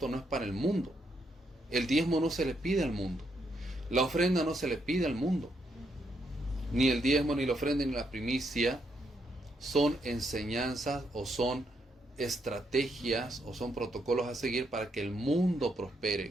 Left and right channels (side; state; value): both; normal; correlation 0.77